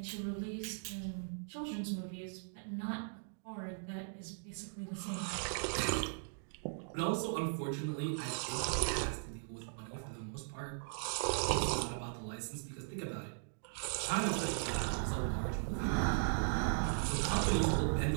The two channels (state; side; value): silent; left; digital silence